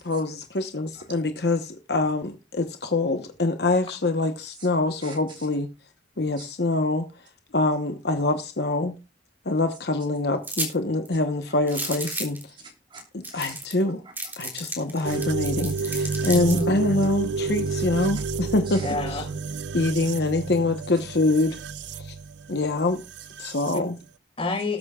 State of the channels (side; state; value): both; normal; correlation 0.33